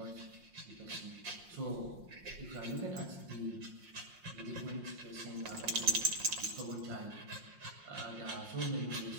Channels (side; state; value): left; late; 5.6 ms